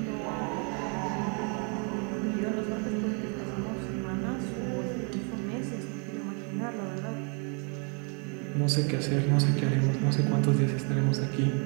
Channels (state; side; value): quieter; left; 36.1 dB